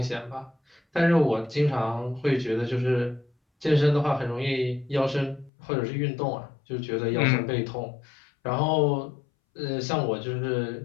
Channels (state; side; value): drops out; right; at 5.5 s